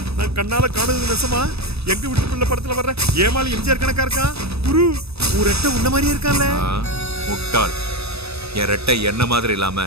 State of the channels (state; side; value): late; left; 0.78 ms